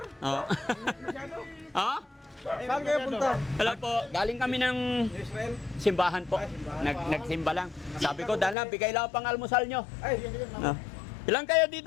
Oh. Oh? Saan kayo punta? Hello po. Galing kami ng Israel? simbahan po. Nagsimba lang. Sabi ko, dala, bigay lang pang almusal nyo. Ay, Oh. Ilan kayo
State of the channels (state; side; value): drops out; right; at 8.6 s